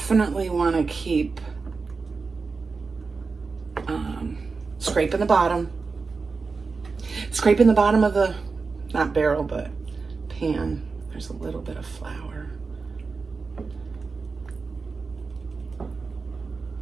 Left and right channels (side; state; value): left; quieter; 4.5 dB